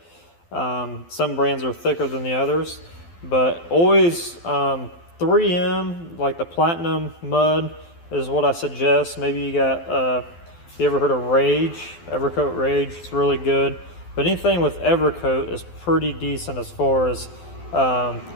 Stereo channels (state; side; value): late; right; 12 ms